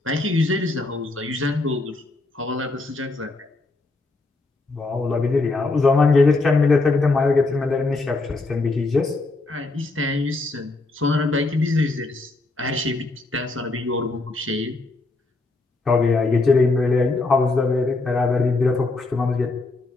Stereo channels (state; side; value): quieter; right; 3.4 dB